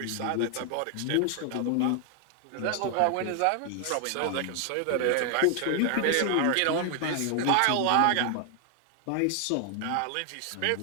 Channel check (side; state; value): both; different; correlation 0.00